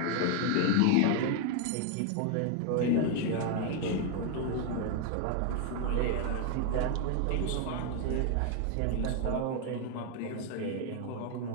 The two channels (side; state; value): both; different; correlation 0.00